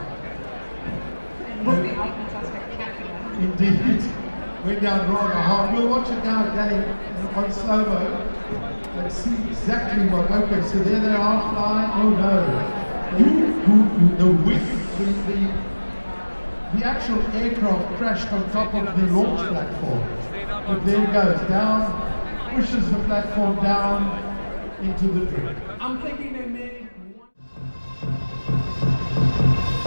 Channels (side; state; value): both; inverted; correlation -1.00